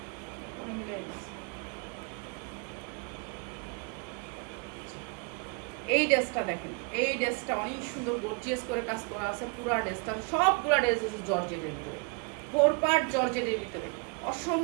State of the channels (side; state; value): left; quieter; 32.0 dB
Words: পরে মিলাই দিস। এই ড্রেসটা দেখেন, এই ড্রেসটা অনেক সুন্দর গর্জিয়াস করে কাজ করা আছে। পুরা ড্রেসটা, সবগুলা ড্রেস হচ্ছে জর্জেটের ভিতরে, 4 পার্ট জর্জেটের ভিতরে,